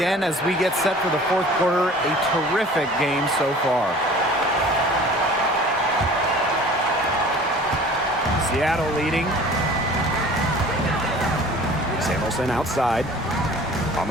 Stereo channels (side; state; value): both; normal; correlation 0.46